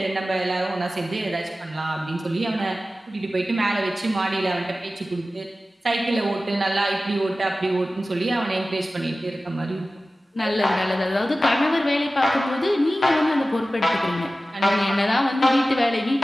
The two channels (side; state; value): both; normal; correlation 0.95